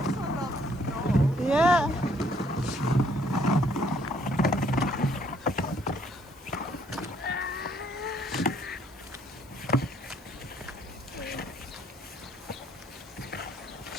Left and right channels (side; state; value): left; noise; hiss, 26 dB below the sound